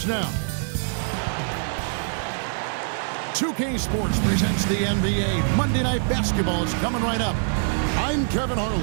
now. 2K Sports presents the NBA. Monday Night Basketball is coming right up. I'm Kevin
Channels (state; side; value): silent; left; digital silence